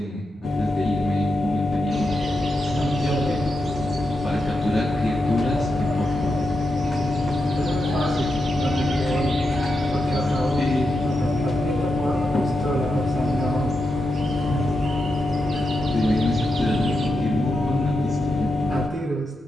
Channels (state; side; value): normal; both; correlation 0.86